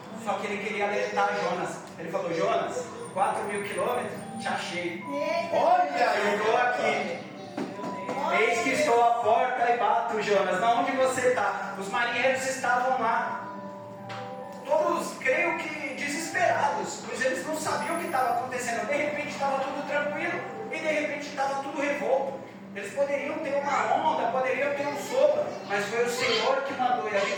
Só que ele queria alertar Jonas. Ele falou: Jonas, 4.000 quilômetros, te achei. Olha, eu estou aqui. Eis que estou à porta e bato, Jonas. Na onde você está? Os marinheiros estavam lá, todos, creio que desesperados, pois eles não sabiam o que estava acontecendo. De repente estava tudo tranquilo e de repente estava tudo revolto. Eles poderiam ter uma onda, poderiam ter um sopro, mas foi o Senhor que mandou. E a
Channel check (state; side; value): identical; both; correlation 1.00